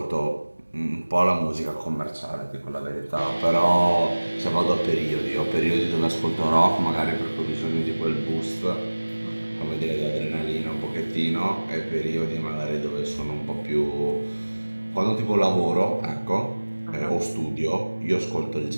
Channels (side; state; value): both; inverted; correlation -1.00